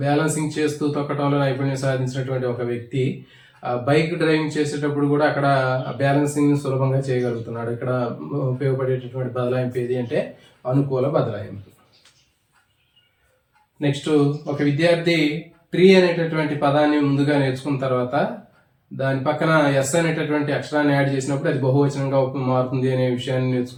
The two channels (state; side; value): identical; both; correlation 1.00